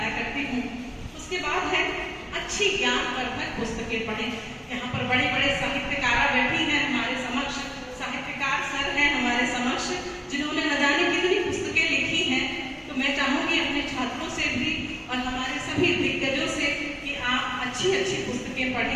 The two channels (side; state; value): both; identical; correlation 1.00